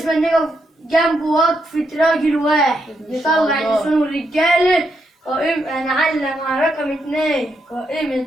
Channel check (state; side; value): normal; both; correlation 0.80